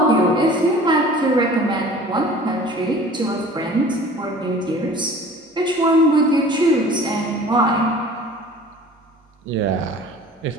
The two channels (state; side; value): normal; both; correlation 0.45